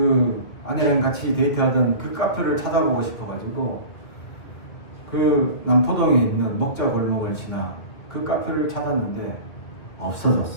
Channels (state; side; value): late; right; 2.2 ms